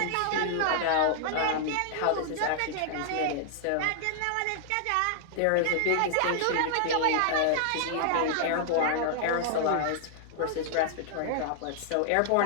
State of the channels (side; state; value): both; different; correlation -0.01